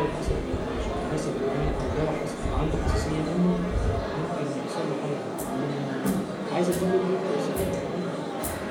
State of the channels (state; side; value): identical; both; correlation 1.00